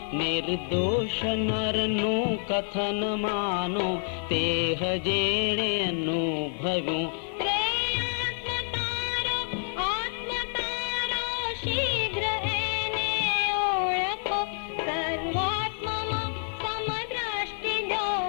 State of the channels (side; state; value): right; silent; 58 dB below the other